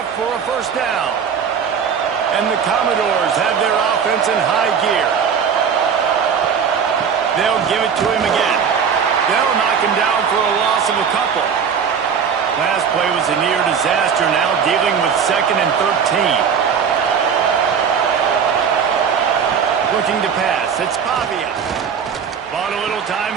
for a first down. And the Commodores have their offense in high gear. They'll give it to him again. They'll knock him down for a loss of a couple. Last play was a near disaster, now dealing with 2nd and 13. Looking to pass, it's Pavia. Bought a little time,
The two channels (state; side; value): quieter; left; 6.9 dB